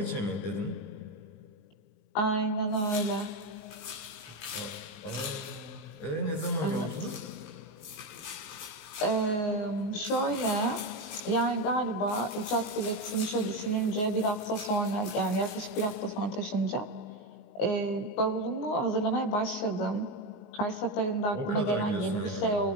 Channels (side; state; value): right; late; 19 ms